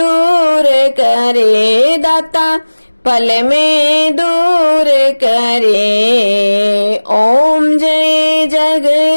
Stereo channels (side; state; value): both; inverted; correlation -1.00